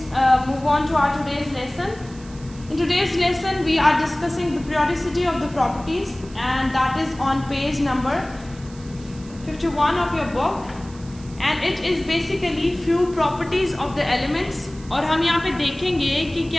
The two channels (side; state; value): right; noise; hiss, 22 dB below the sound